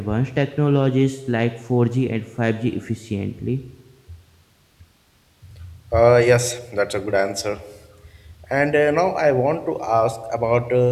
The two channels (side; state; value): both; identical; correlation 1.00